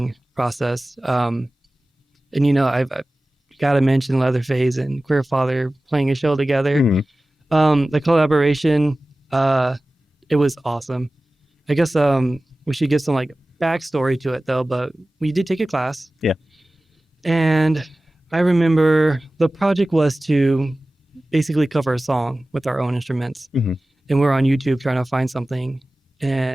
process, and I've got to mention Leatherface and Queer Father playing a show together. Mhm. The collaboration, it was awesome. I guess we should give some like backstory to it though, but we did take a class. Yeah. And I remember the project was to basically cover a song with our own instruments. Mhm. And we're on YouTube trying to find something.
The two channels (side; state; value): both; normal; correlation 0.97